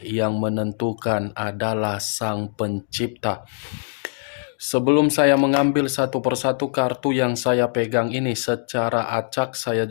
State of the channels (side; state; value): right; silent; digital silence